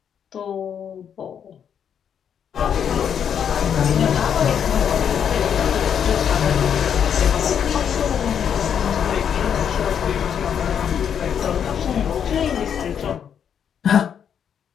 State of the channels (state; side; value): quieter; right; 8.2 dB